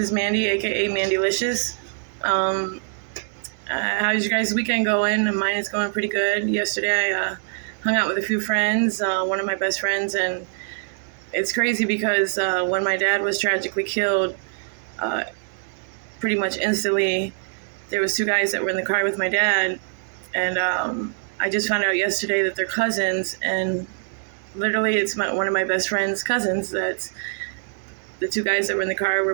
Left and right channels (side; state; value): left; silent; 63 dB below the other